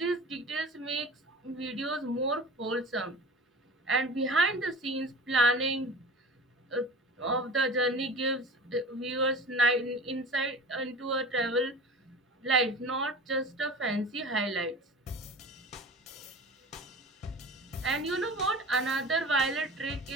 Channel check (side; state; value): both; normal; correlation 0.36